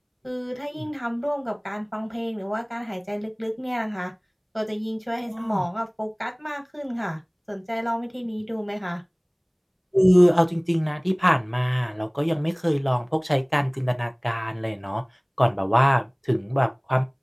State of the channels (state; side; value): identical; both; correlation 1.00